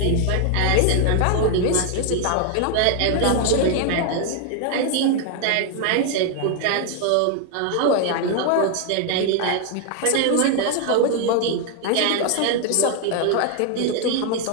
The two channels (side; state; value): both; different; correlation 0.00